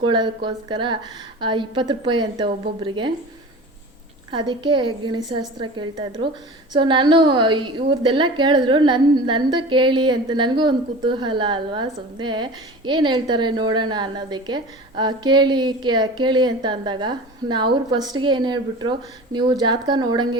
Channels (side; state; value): both; normal; correlation 0.36